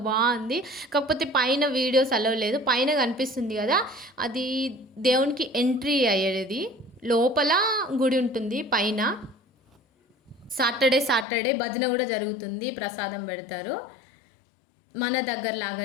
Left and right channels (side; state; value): right; drops out; at 11.2 s